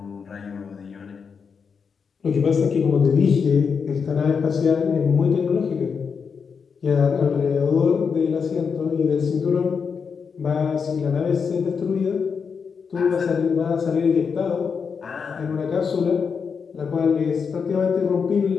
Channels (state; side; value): quieter; right; 6.0 dB